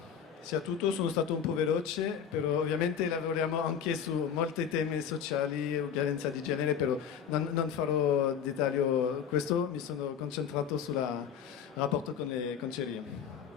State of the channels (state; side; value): quieter; right; 7.9 dB